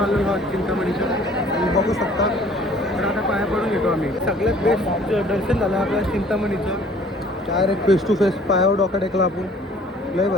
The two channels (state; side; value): normal; both; correlation 0.54